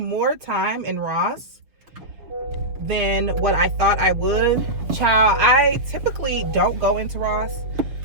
time in Ross than what I thought I would. Child, I typically don't go into Ross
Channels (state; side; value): late; left; 6.3 ms